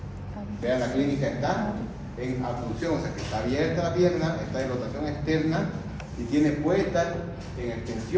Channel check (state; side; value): identical; both; correlation 1.00